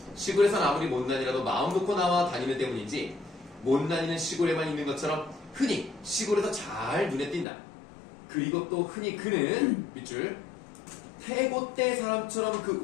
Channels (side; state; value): right; drops out; at 7.5 s